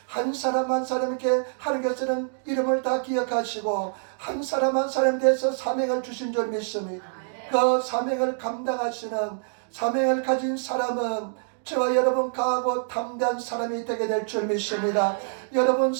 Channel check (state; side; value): silent; left; digital silence